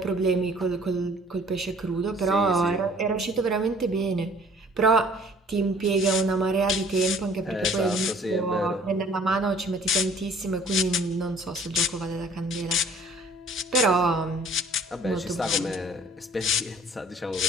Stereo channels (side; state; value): both; normal; correlation 0.54